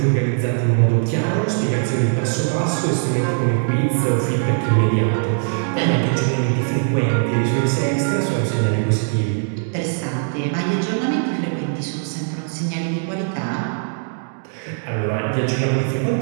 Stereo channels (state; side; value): silent; left; 62 dB below the other